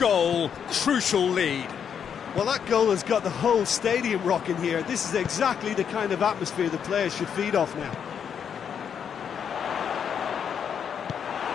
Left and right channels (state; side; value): quieter; right; 7.7 dB